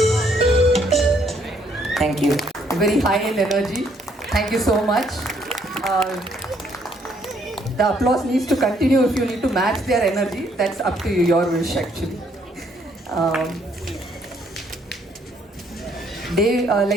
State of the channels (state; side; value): normal; both; correlation 0.68